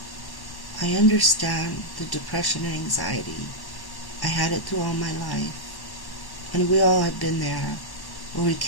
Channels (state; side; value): late; right; 1.1 ms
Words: I understand the depression and anxiety. I had it through all my life. And we all have been there, where we